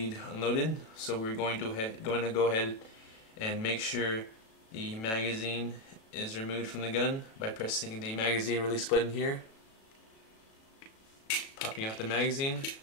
unloaded. So we're going to go ahead and make sure the magazine is removed from the gun by pressing the magazine release button here, popping out the magazine.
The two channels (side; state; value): right; late; 36 ms